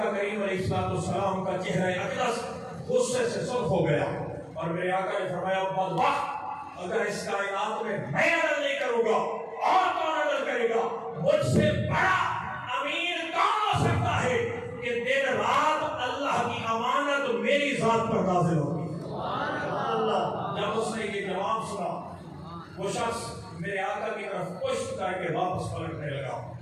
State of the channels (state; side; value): identical; both; correlation 1.00